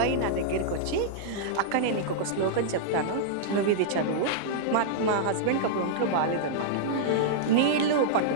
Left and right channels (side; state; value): both; different; correlation -0.02